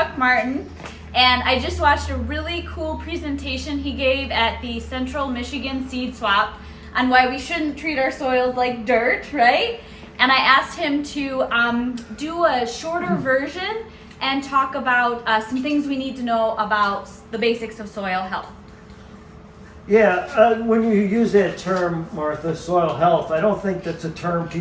Martin, and I just watched a really cool presentation he gave at the Central Michigan Seed Swap on why we shouldn't treat our soils like dirt, right? And I asked him to do a shorter version and talk about some things we need to know about the basics of soil health. Yeah, when you use that term, Martha, soil health, I don't think that's a term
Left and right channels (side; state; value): both; identical; correlation 1.00